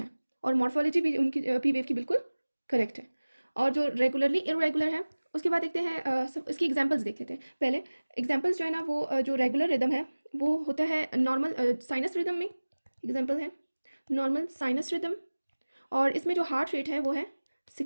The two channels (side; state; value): both; inverted; correlation -1.00